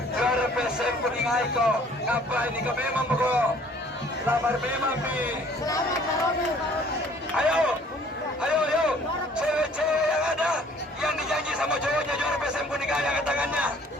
juara BPSM kuningai ko. Ngapain ini ka memang ko? Lamar memang bi. Ayo. Cewek-cewek yang ada yang dijanji sama cowoknya juara PSM Kuningan yang angkat tangannya.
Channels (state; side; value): normal; both; correlation 0.56